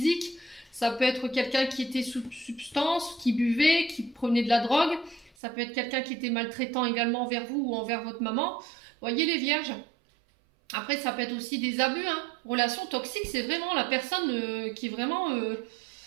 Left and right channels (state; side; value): drops out; left; at 5.3 s